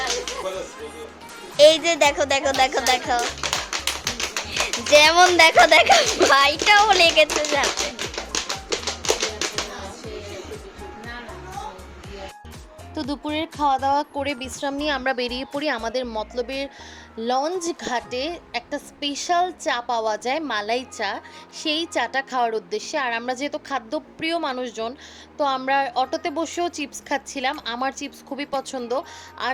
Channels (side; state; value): both; identical; correlation 1.00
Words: এই যে দেখো দেখো দেখো দেখো, যেমন দেখো দেখো ভাইটাও লেগেছে যাচ্ছে। তো দুপুরের খাওয়া দাওয়া করে বিশ্রাম নিয়ে আমরা বেরিয়ে পড়ি আমাদের মতলবের লঞ্চ ঘাটে। একটা স্পেশাল চা পাওয়া যায়, মালাই চা, সেই চাটা খাওয়ার উদ্দেশ্যে। আর আমরা যেহেতু খাদ্যপ্রিয় মানুষজন, তো আমরা অটোতে বসেও চিপস খাচ্ছিলাম। আমার চিপস খুবই পছন্দ, আর